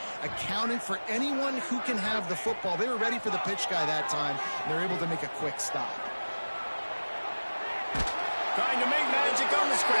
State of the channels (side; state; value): both; inverted; correlation -1.00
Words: accounting for anyone who can have the football. They were ready for the pitch guy that time, and they're able to make a quick stop. Trying to make magic on the